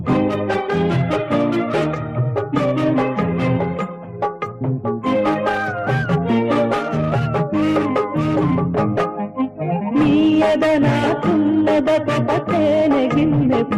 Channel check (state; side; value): identical; both; correlation 1.00